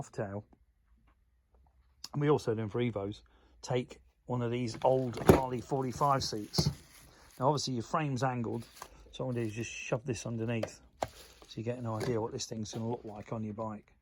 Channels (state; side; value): identical; both; correlation 1.00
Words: and we also do them for Evos, take one of these old Harley 45 seats. Now obviously your frame's angled, so what I do is just shove this underneath so you get an idea what this thing's going to look like on your bike.